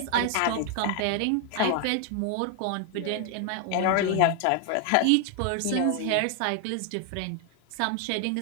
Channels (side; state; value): both; different; correlation 0.00